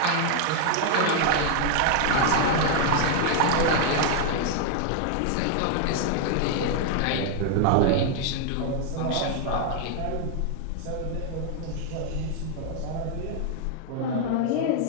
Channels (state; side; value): different; both; correlation 0.00